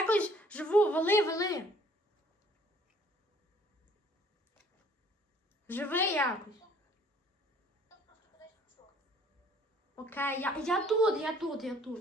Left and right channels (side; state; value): both; normal; correlation 0.57